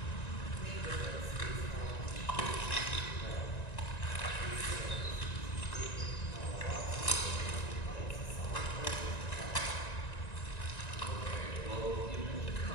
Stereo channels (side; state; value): right; late; 1.9 ms